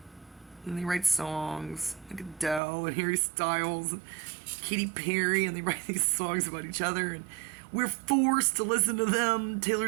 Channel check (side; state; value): left; drops out; at 2.6 s